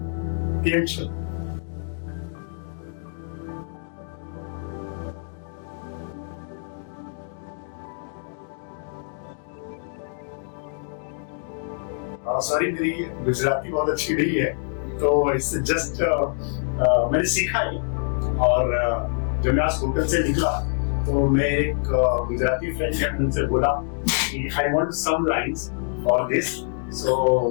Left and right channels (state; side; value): silent; right; 59 dB below the other